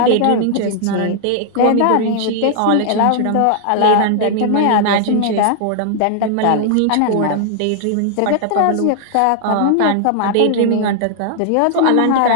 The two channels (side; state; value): both; different; correlation 0.00